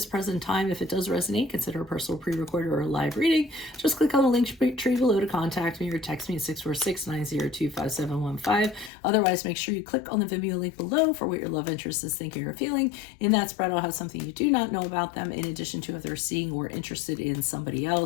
present time. If it does resonate, consider a personal pre-recorded or a live reading. Just click on the link tree below to contact me or text me at 646-902-5715. Otherwise, make sure you click on the Vimeo link below for what your love interest is thinking or feeling. In that spread, I'll have something you do not know about them, in addition to if they're seeing or interested in somebody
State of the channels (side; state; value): right; drops out; at 8.9 s